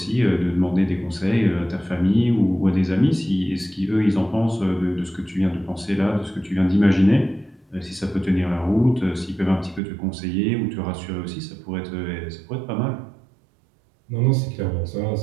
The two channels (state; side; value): drops out; left; at 9.8 s